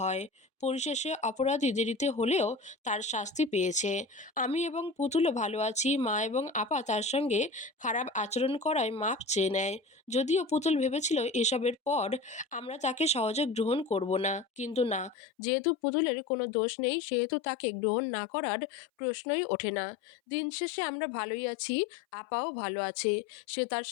হয়। পরিশেষে অপরাধী দেরিতে হলেও তার শাস্তি পেয়েছে। আমি এবং পুতুলও ভালো আছি। মা এবং আপা তার সঙ্গে খারাপ আচরণ করায় মাপ চেয়ে নেয়। যদিও পুতুল ভেবেছিল এসবের পর আমরা তাকে সহজে গ্রহণ করব না, কিন্তু না, যেহেতু পুতুলের কোনো দোষ নেই সেহেতু তাকে গ্রহণ না করার প্রশ্নই ওঠে না। দিন শেষে আমরা ভালোই আছি। আপাও ভালো আছে। সে তার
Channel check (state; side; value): drops out; right; at 15.2 s